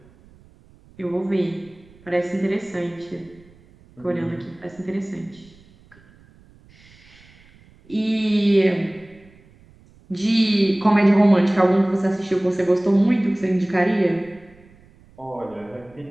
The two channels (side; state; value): right; noise; rumble, 27 dB below the sound